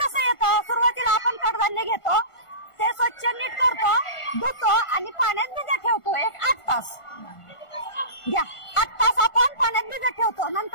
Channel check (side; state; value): right; late; 1.4 ms